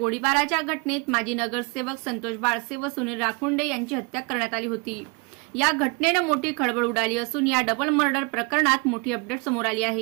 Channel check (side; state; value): left; quieter; 30.0 dB